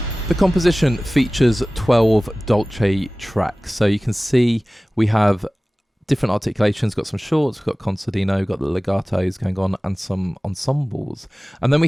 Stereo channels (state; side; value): normal; both; correlation 0.98